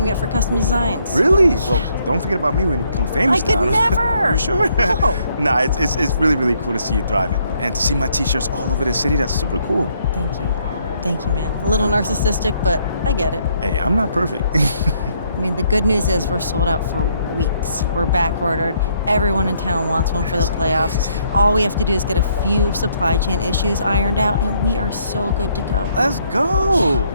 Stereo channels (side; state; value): both; inverted; correlation -0.70